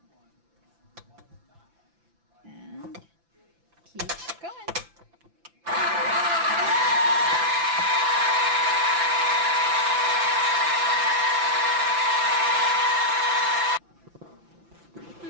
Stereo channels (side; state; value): left; late; 5.9 ms